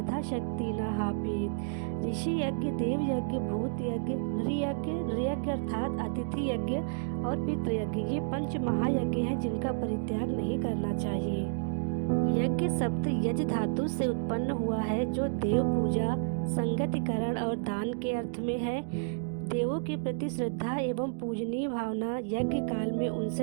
न हापेत। ऋषि यज्ञ, देव यज्ञ, भूत यज्ञ, नृयज्ञ अर्थात अतिथि यज्ञ और पितृयज्ञ, ये पंच महायज्ञ हैं जिनका परित्याग नहीं करना चाहिए। यज्ञ शब्द यज धातु से उत्पन्न हुआ है, जो देव पूजा, संगतिकरण और दान के अर्थ में है। देवों के प्रति श्रद्धा एवं पूजनीय भावना यज्ञ काल में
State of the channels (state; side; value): silent; left; digital silence